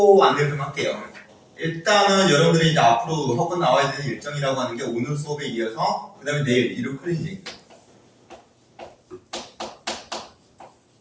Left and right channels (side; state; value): both; identical; correlation 1.00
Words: 안내를 좀 할게요. 일단은 여러분들이 이제 앞으로 혹은 나와야 되는 일정이라고 하는 게 오늘 수업에 이어서 그 다음에 내일 일요 클리닉